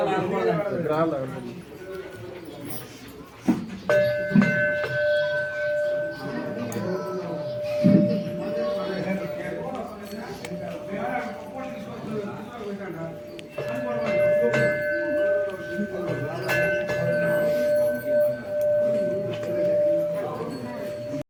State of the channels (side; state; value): both; identical; correlation 1.00